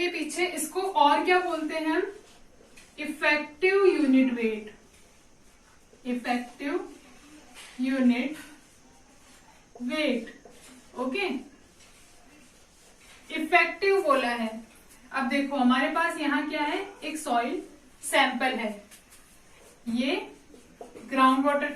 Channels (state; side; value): identical; both; correlation 1.00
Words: पीछे इसको और क्या बोलते हैं हम? Effective unit weight. Effective unit weight. Okay, effective बोला है, अब देखो हमारे पास यहाँ क्या है, एक सॉइल सैंपल है, ये ग्राउंड वाटर